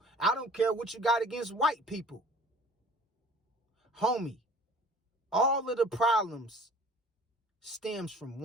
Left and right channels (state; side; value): normal; both; correlation 0.47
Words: I don't care what you got against white people. Homie, all of the problems stems from